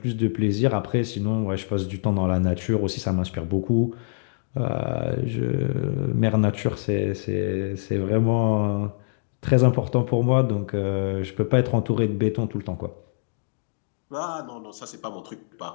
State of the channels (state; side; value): silent; right; digital silence